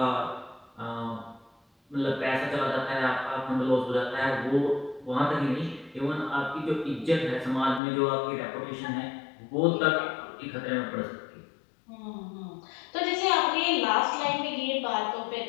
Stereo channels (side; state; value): right; drops out; at 7.8 s